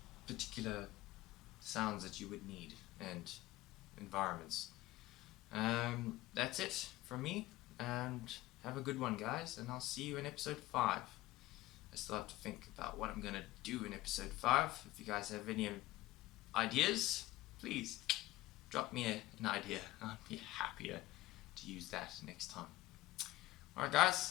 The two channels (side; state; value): right; quieter; 17.7 dB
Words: particular sounds that you would need and environments. That's it from me, and have a good one, guys, and I'll see you in episode 5. I still have to think about what I'm going to do in episode 5. If you guys have any ideas, please drop me an idea. I'd be happier to use that next time. Alright,